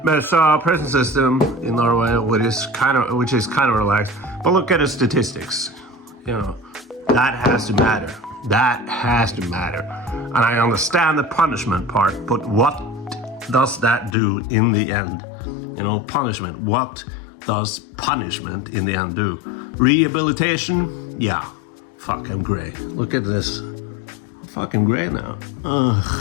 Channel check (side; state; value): right; drops out; at 14.2 s